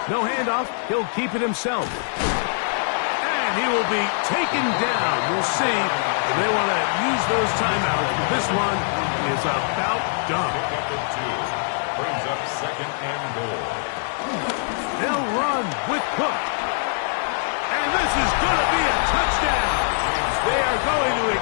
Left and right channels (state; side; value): silent; right; digital silence